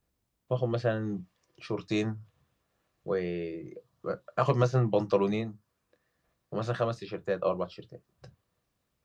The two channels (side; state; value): both; identical; correlation 1.00